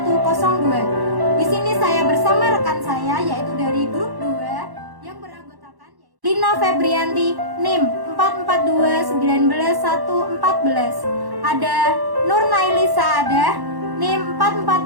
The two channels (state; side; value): late; left; 1.1 ms